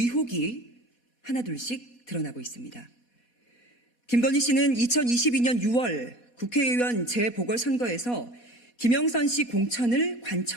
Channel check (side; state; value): right; late; 4.1 ms